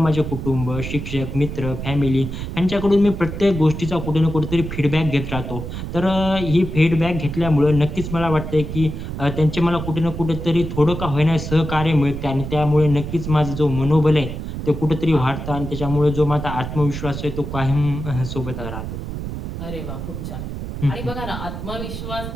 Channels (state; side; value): noise; right; rumble, 6 dB below the sound